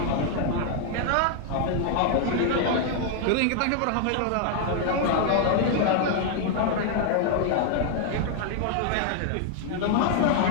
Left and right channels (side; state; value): both; different; correlation 0.00